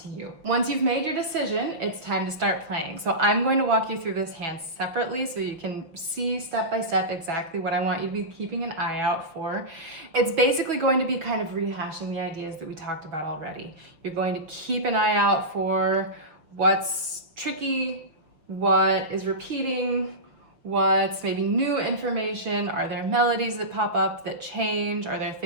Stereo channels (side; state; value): left; late; 6.2 ms